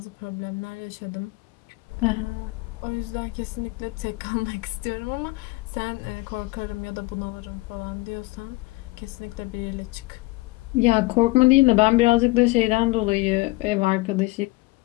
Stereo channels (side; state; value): right; quieter; 22.4 dB